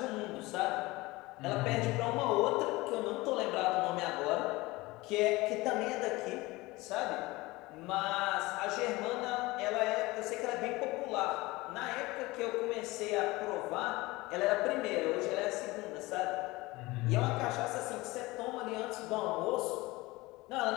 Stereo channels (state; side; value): quieter; right; 21.2 dB